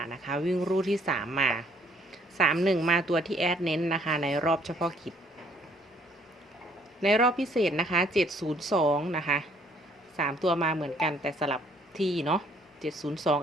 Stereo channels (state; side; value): normal; both; correlation 0.63